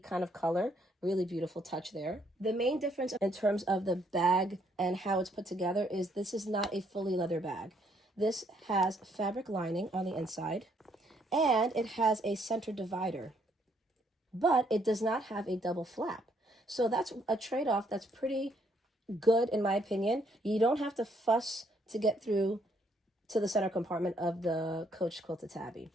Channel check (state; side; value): normal; both; correlation 0.70